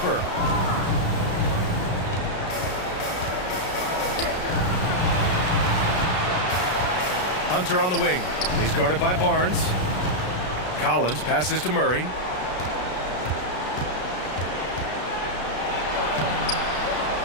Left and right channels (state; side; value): late; right; 33 ms